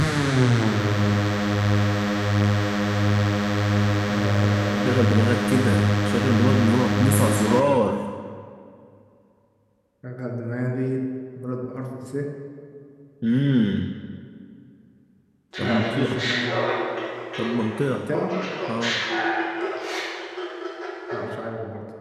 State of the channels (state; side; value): identical; both; correlation 1.00